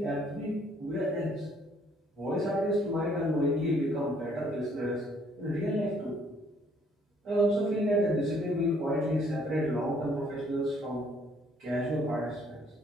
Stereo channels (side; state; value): both; normal; correlation 0.64